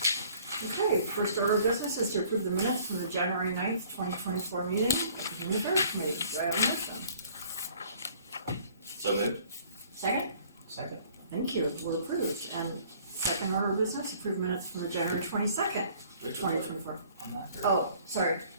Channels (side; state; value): both; inverted; correlation -0.56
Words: Okay, first order of business is to approve the minutes from the January 9th, 2024 meeting of the Human Affairs Committee. Do I have a motion? So moved. Second? Second. Thank you, we're approved. And second order of business, approve minutes from the January 22nd, Which one? 2024. I'm not sure. Oh, sorry.